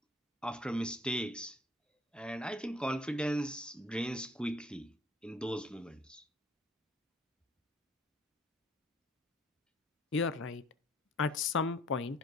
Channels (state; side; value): normal; both; correlation 0.58